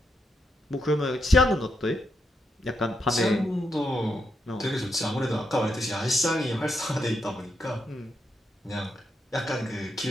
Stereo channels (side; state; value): both; normal; correlation 0.82